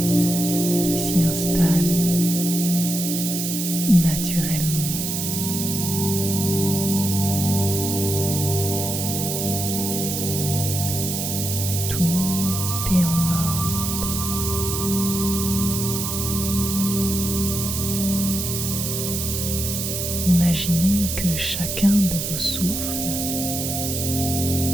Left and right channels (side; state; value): right; noise; hiss, 3 dB below the sound